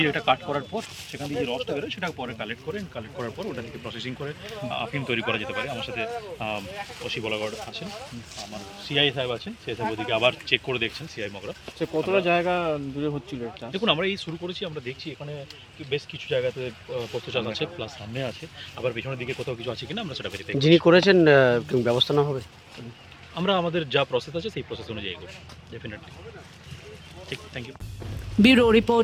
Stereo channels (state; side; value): identical; both; correlation 1.00